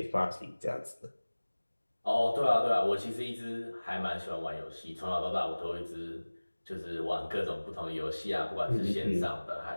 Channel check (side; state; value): both; inverted; correlation -1.00